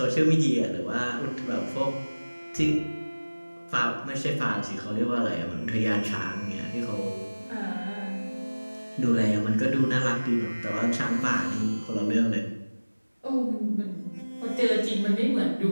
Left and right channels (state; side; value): inverted; both; correlation -1.00